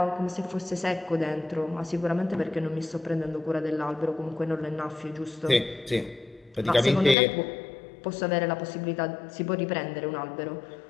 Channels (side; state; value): right; drops out; at 7.2 s